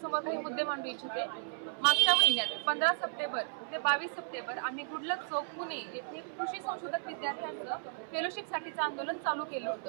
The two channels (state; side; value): silent; left; 55 dB below the other